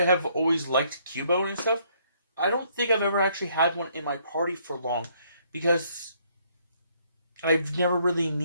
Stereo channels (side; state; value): both; inverted; correlation -0.67